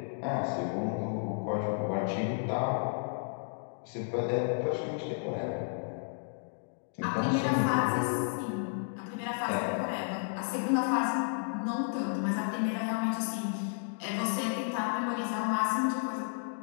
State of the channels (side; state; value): right; silent; digital silence